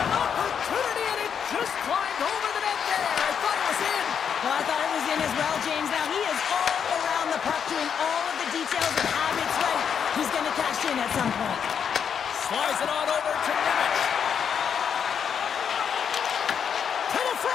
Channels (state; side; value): quieter; right; 7.5 dB